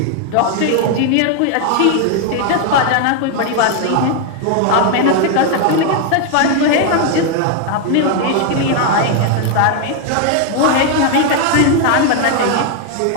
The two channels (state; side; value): different; both; correlation 0.01